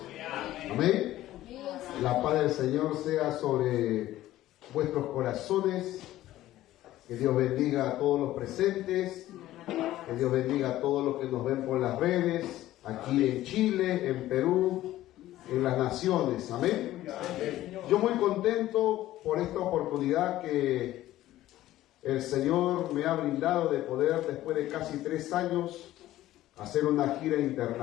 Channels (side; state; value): right; quieter; 14.7 dB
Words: Amén. La paz del Señor sea sobre vuestros corazones. Que Dios bendiga a todos los presentes. Que Dios bendiga a todos los que nos ven por las redes, aquí en Chile, en Perú, en las naciones. Amén. Yo muy contento por esta oportunidad que el Señor me ha brindado de poder, después de casi 3 años, hacer una gira